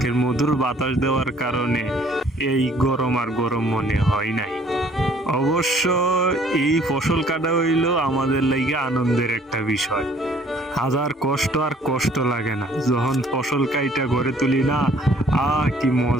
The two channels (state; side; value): normal; both; correlation 0.58